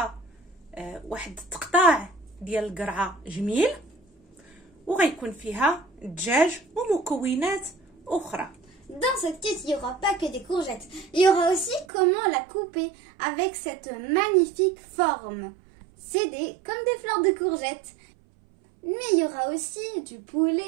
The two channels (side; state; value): left; drops out; at 11.9 s